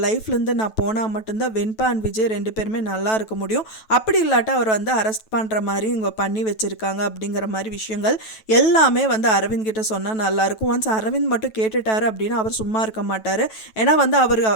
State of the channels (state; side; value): late; right; 9.2 ms